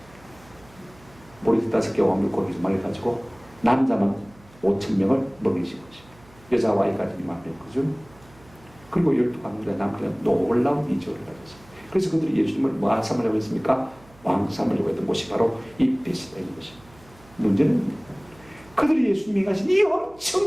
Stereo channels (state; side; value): noise; right; hum, 26 dB below the sound